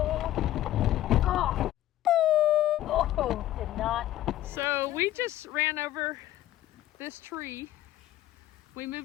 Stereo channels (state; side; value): quieter; right; 13.8 dB